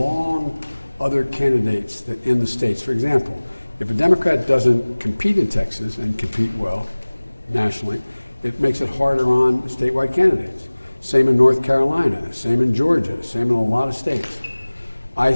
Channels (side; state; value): both; inverted; correlation -1.00